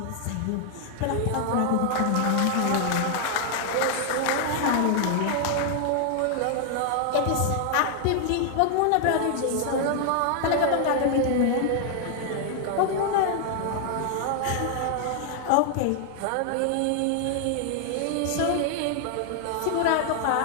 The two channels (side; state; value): both; different; correlation 0.00